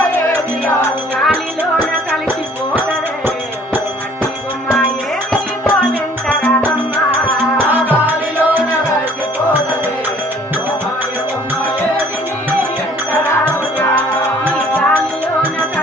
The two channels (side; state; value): both; normal; correlation 0.55